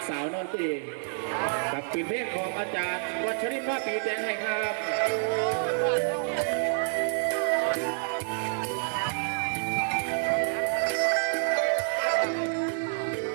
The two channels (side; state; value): left; silent; 59 dB below the other